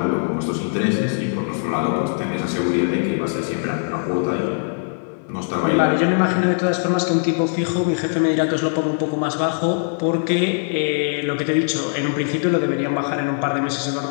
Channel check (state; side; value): silent; right; digital silence